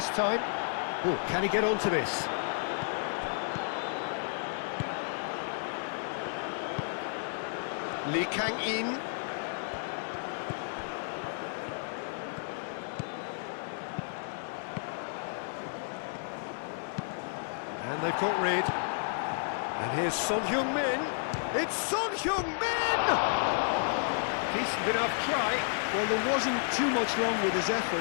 time. Oh, can he get onto this? Lee Kang-in. And they've got rid. And here's Son Heung-min. It's Son Heung-min! Decent enough try. Well, there wasn't too much wrong with his effort.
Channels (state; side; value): silent; right; digital silence